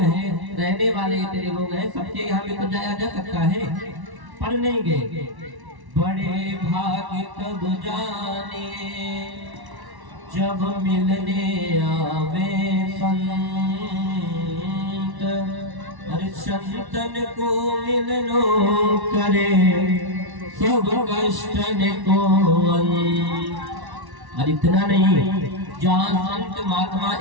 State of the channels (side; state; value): left; late; 1.1 ms